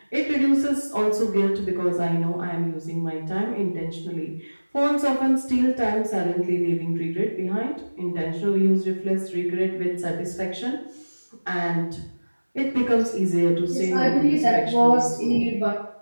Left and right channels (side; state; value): both; inverted; correlation -1.00